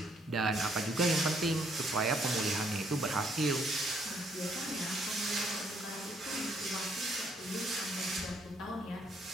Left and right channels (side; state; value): both; normal; correlation 0.68